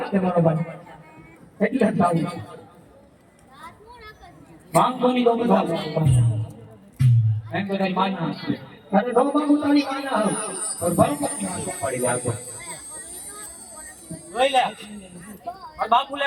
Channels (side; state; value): both; identical; correlation 1.00